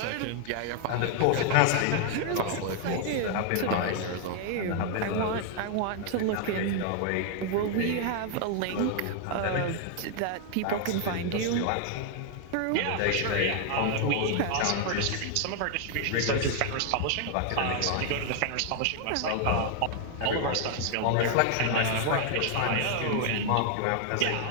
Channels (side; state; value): both; different; correlation 0.00